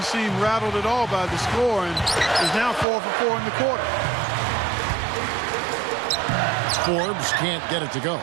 seem rattled at all by the score and is now 4 for 4 in the quarter. Forbes can't get it to go.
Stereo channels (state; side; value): drops out; left; at 2.9 s